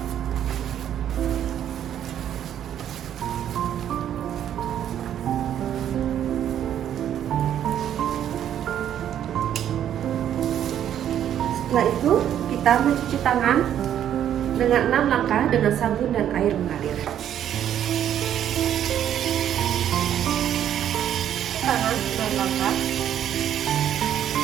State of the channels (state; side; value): quieter; left; 10.3 dB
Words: Setelah itu kita mencuci tangan dengan 6 langkah dengan sabun dan air mengalir. Tangan 6 langkah.